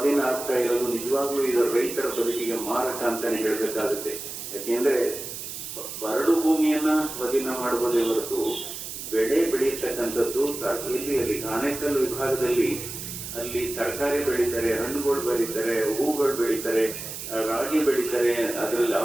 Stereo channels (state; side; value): noise; right; hiss, 8 dB below the sound